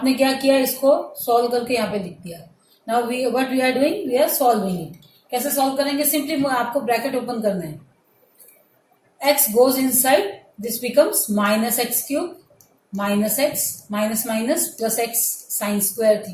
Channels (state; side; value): identical; both; correlation 1.00